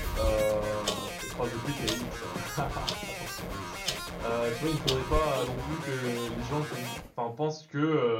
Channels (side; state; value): both; identical; correlation 1.00